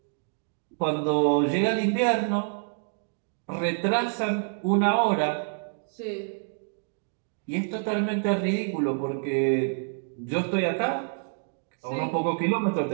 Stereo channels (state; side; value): silent; left; 60 dB below the other